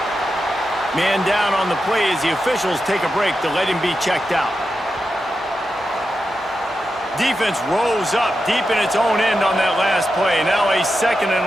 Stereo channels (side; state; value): both; normal; correlation 0.89